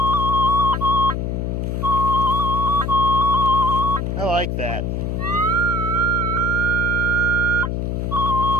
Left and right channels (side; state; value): left; noise; hum, 1 dB below the sound